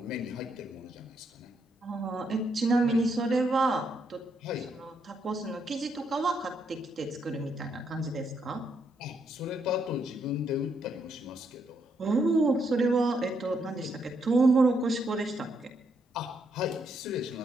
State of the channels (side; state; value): both; normal; correlation 0.76